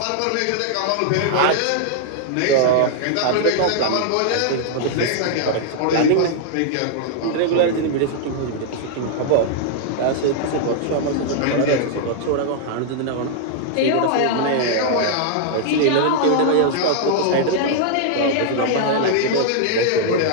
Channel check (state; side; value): different; both; correlation -0.01